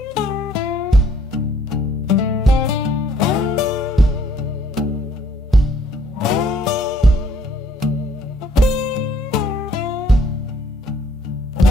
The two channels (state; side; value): normal; both; correlation 0.63